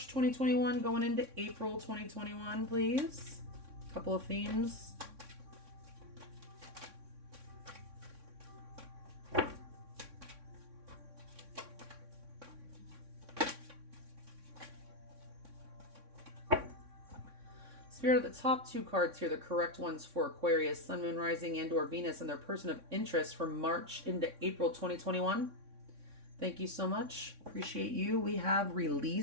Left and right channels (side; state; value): left; late; 3.6 ms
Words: 2021 going into April 2021, please. A couple of themes. Spirit, the top two cards here, the correct ones for Aquarius, Sun, Moon, Rising, and or Venus and their person of interest from March into April 2021. Thank you so much. Appreciate you. We have